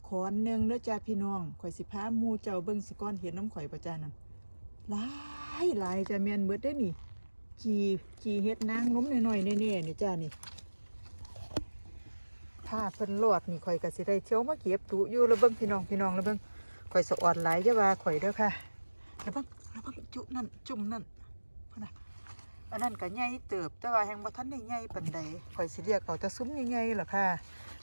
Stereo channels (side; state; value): both; inverted; correlation -1.00